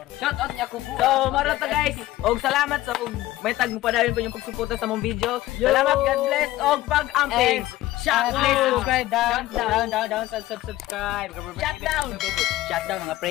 Shoutout niya ko po. So, marata guys. Og salamat sa og may tag mo pa dahil po yung pagsuporta sa mong video. Salamat, God bless og pag-amping. Shout Please out. subscribe down, subscribe. Shut down. Shut down mga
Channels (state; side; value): quieter; right; 16.3 dB